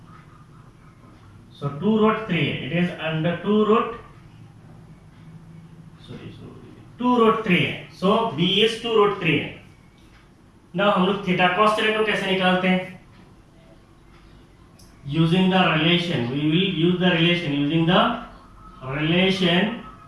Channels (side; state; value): both; identical; correlation 1.00